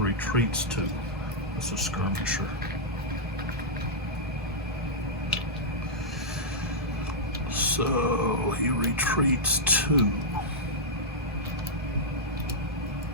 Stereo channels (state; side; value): normal; both; correlation -0.09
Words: retreats 2. That's a skirmisher. So he retreats 2.